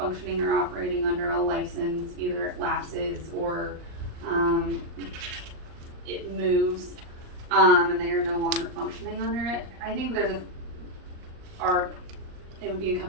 or operating under a license, either it lapses or, it moves, and they are no longer functioning under it, I think there's it would be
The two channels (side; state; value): left; late; 38 ms